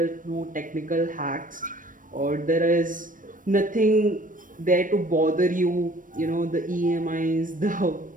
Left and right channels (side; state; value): left; late; 0.39 ms